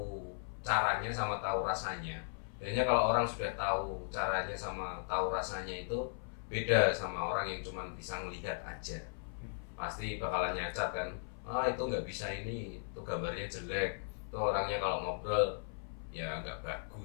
caranya sama tahu rasanya. Biasanya kalau orang sudah tahu caranya sama tahu rasanya itu beda sama orang yang cuma bisa ngelihat aja. Pasti bakalan nyacat kan, itu nggak bisa ini, itu gambarnya jelek, itu orangnya kalau ngobrol ya nggak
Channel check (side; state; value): right; silent; 53 dB below the other